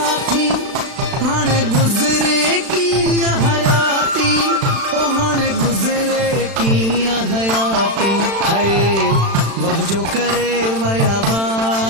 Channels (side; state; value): left; late; 36 ms